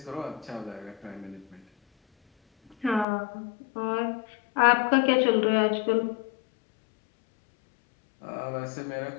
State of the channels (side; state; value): right; drops out; at 3.1 s